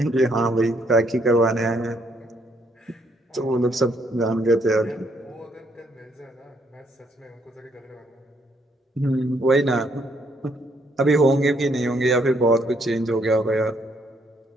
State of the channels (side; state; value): both; normal; correlation 0.71